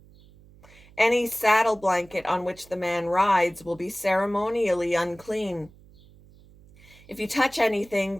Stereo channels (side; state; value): right; noise; hum, 25 dB below the sound